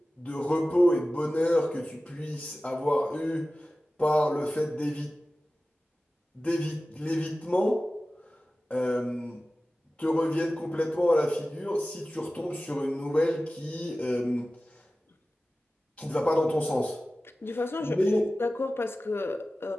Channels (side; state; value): both; normal; correlation 0.96